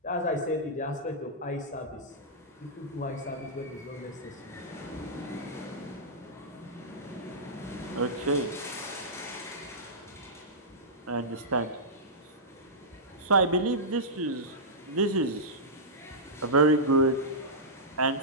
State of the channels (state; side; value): normal; both; correlation -0.14